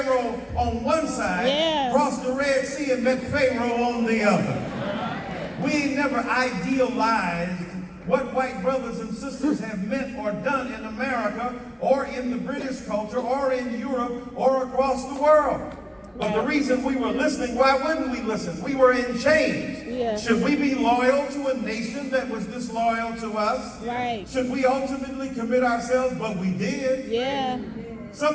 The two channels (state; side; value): identical; both; correlation 1.00